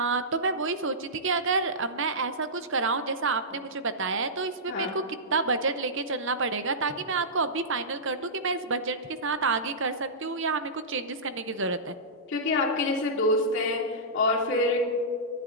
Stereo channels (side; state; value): both; normal; correlation -0.17